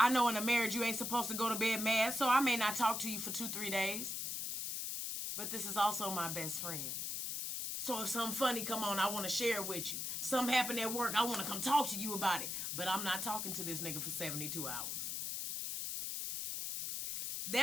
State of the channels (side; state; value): left; noise; hiss, 3 dB below the sound